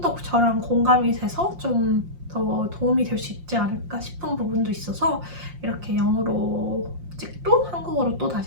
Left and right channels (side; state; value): left; late; 5.7 ms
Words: 더 저랑 공감이 돼서 좀 더 도움이 될 수 있지 않을까 싶은 부분도 있어서 이렇게 영어로 찍고 한국어로 또